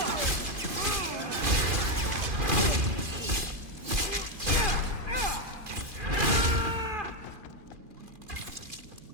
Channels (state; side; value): late; left; 2.4 ms